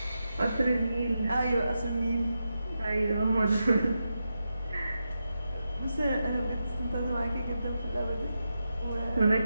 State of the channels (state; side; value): inverted; both; correlation -0.88